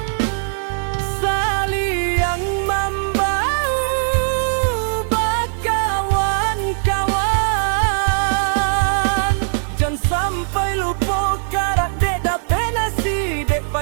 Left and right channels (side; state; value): left; silent; digital silence